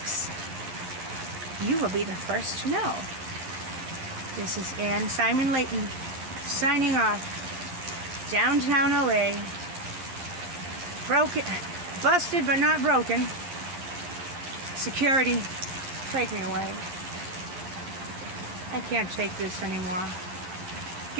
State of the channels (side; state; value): left; late; 11 ms